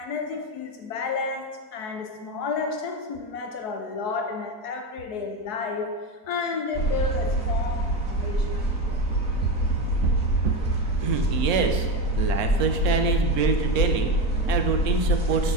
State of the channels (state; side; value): late; right; 3.7 ms